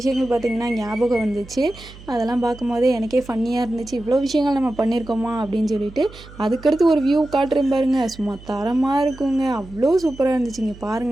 பார்த்திங்கன்னா ஞாபகம் வந்துச்சு. அதெல்லாம் பார்க்கும்போதே எனக்கே ஃபன்னியாக இருந்துச்சு. இவ்வளோ விஷயங்கள் நம்ம பண்ணியிருக்கோமா அப்படின்னு சொல்லிட்டு. அதுக்கடுத்து ஒரு வியூ காட்டுறேன் பாருங்கள். சும்மா தரமாக இருக்குங்க. அவ்வளோ சூப்பராக இருந்துச்சுங்க.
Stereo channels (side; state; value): right; noise; hum, 19 dB below the sound